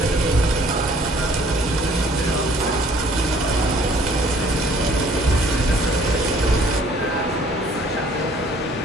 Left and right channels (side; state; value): both; normal; correlation 0.57